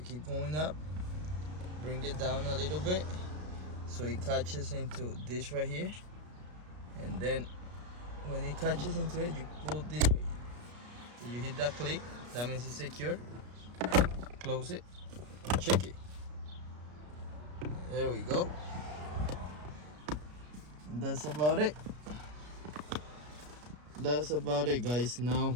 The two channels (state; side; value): late; left; 33 ms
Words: keep going up, bring it down a little bit so it catches into this right here, and then when it catches into it, you pull this way. So you hit that click, that means it's secure. Close it, check it. There we go. That's about it. That's about it, guys. Now